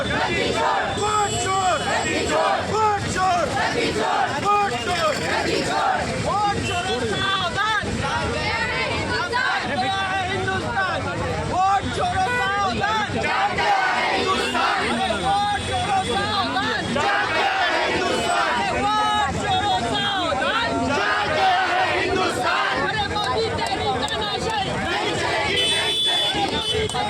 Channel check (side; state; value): both; identical; correlation 1.00